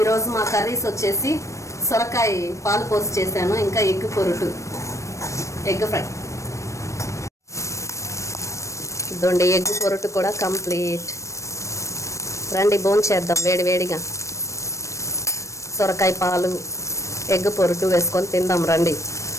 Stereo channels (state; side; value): late; right; 0.15 ms